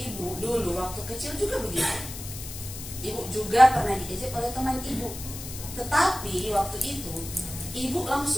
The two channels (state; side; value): noise; left; hiss, 10 dB below the sound